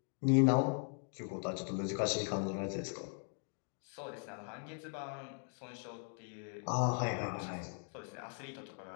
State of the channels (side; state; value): right; silent; 52 dB below the other